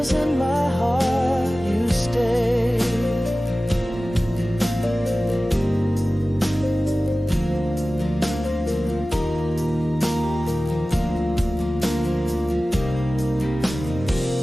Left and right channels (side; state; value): both; normal; correlation 0.96